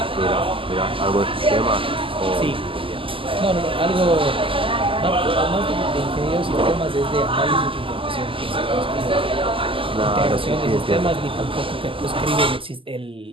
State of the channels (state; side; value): late; left; 0.25 ms